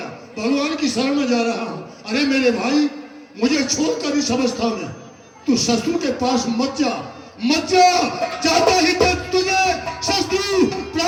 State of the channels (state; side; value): identical; both; correlation 1.00